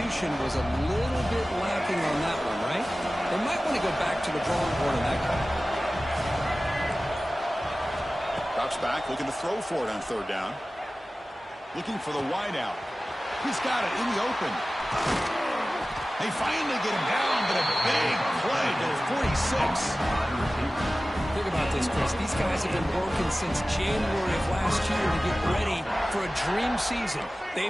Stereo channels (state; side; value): normal; both; correlation 0.96